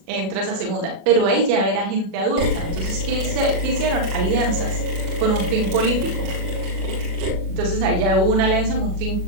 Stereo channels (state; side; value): late; left; 37 ms